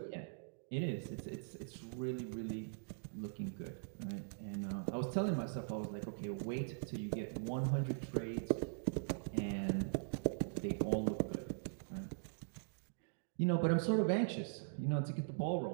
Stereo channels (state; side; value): silent; left; digital silence